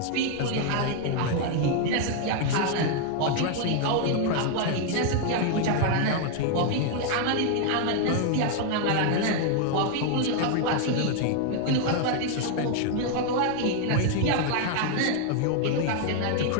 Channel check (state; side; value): different; both; correlation 0.00